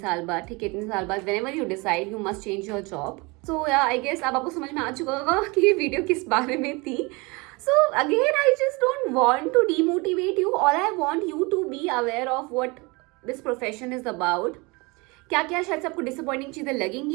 बाद, ठीक है, इतने साल बाद, whenever you decide you must change your job. So yeah, I guess अब आपको समझ में आ चुका होगा कि ये वीडियो किस बारे में थी. So again, I just don't want to demotivate you. All I want you to be aware of what this profession is about. क्या क्या शायद से आपको डिसअपॉइंटिंग चीज़ें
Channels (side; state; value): left; quieter; 26.7 dB